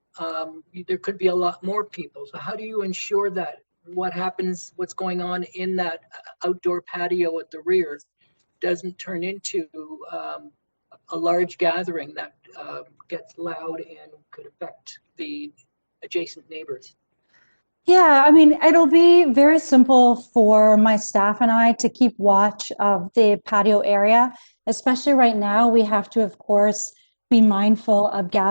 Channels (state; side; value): inverted; both; correlation -1.00